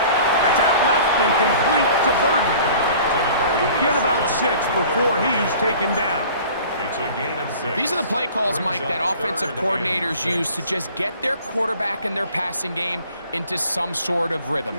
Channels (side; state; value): both; inverted; correlation -0.47